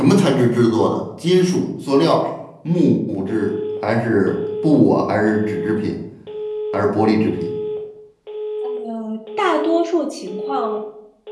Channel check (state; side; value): identical; both; correlation 1.00